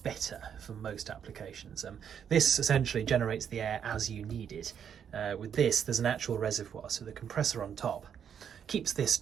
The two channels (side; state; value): left; quieter; 8.2 dB